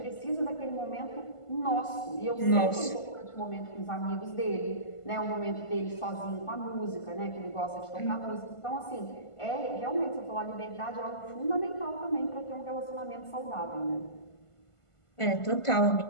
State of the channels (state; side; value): late; right; 1.5 ms